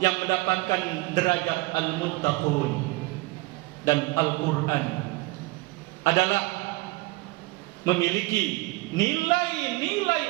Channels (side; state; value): left; quieter; 22.6 dB